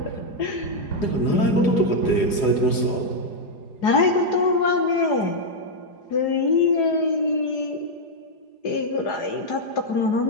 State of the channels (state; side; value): late; right; 4.9 ms